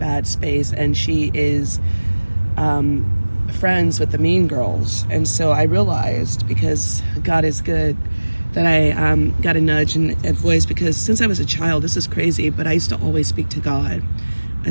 space, and she is friends with the mean girls. And so I realized, because God is good, that I got a nudge and a voice, because since I was a child, this is crazy, but I used to always speak to God,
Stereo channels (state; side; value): inverted; both; correlation -1.00